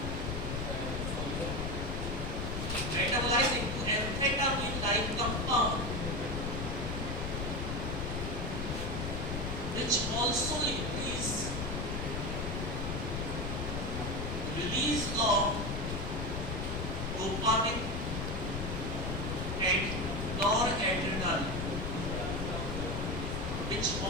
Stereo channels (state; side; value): noise; left; rumble, 3 dB below the sound